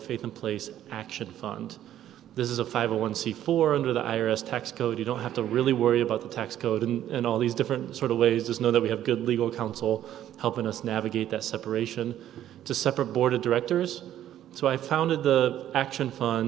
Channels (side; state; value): left; quieter; 11.8 dB